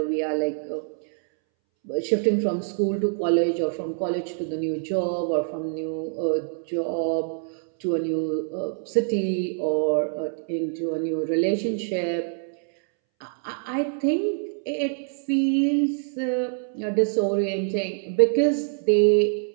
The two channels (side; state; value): left; silent; 62 dB below the other